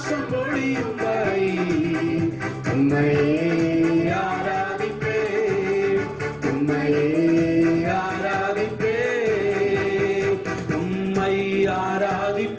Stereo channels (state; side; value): identical; both; correlation 1.00